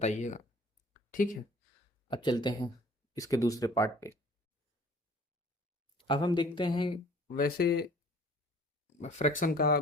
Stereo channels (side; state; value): both; normal; correlation 0.51